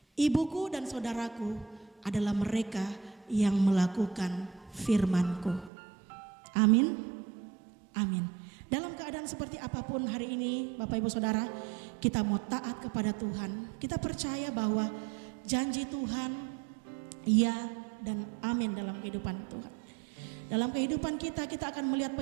ibuku dan saudaraku adalah mereka yang melakukan firman-Ku. Amin, amin. Dalam keadaan seperti apapun hari ini Bapak Ibu Saudara, kita mau taat kepada Tuhan. Kita percaya bahwa janji Tuhan ya dan amin dalam kehidupan Tuhan. Dalam kehidupan kita akan melihat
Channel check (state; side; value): drops out; left; at 5.7 s